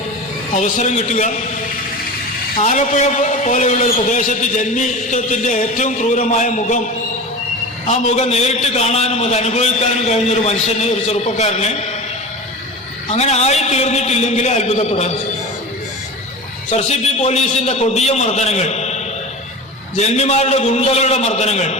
അവസരം കിട്ടുക, ആലപ്പുഴ പോലെയുള്ള ഒരു പ്രദേശത്ത് ജന്മിത്വത്തിൻ്റെ ഏറ്റവും ക്രൂരമായ മുഖം, ആ മുഖം നേരിട്ട് കാണാനും അത് അനുഭവിക്കാനും കഴിഞ്ഞൊരു മനുഷ്യന്, ഒരു ചെറുപ്പക്കാരന് അങ്ങനെ ആയിത്തീർന്നിട്ടില്ലെങ്കിൽ അത്ഭുതപ്പെടാൻ. SRCP പോലീസിൻ്റെ കൊടിയ മർദ്ദനങ്ങൾ, ജന്മിമാരുടെ ഗുണ്ടകളുടെ മർദ്ദനങ്ങൾ,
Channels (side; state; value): both; normal; correlation 0.30